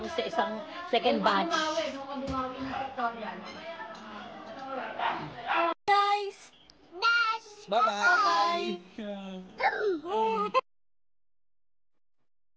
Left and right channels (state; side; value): identical; both; correlation 1.00